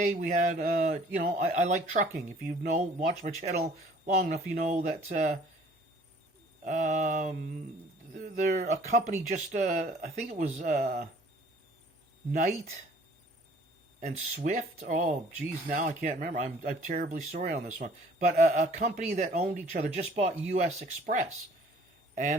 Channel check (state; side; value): normal; both; correlation 0.54